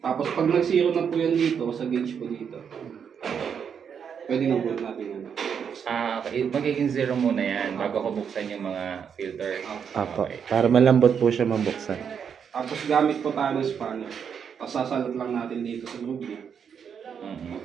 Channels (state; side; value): quieter; left; 7.3 dB